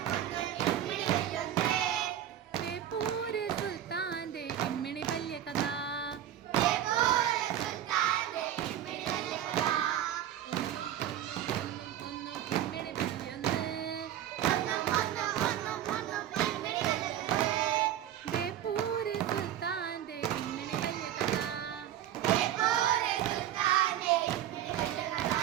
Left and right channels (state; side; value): quieter; left; 11.3 dB